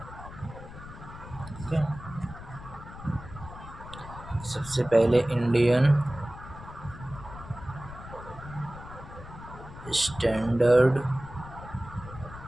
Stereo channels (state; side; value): noise; left; rumble, 14 dB below the sound